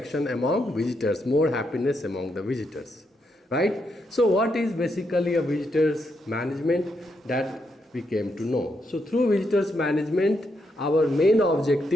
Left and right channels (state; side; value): normal; both; correlation 0.80